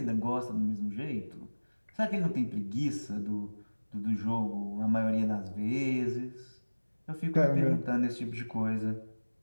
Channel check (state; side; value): inverted; both; correlation -1.00